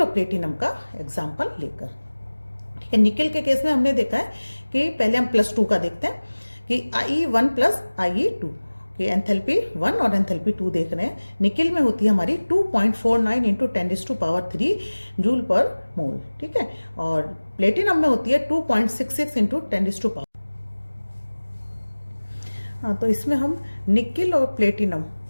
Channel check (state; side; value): inverted; both; correlation -1.00